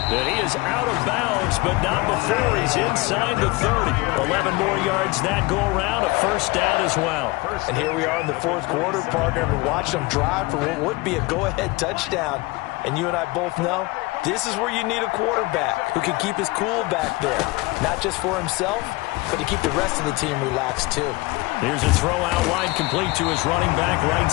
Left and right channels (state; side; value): quieter; right; 22.6 dB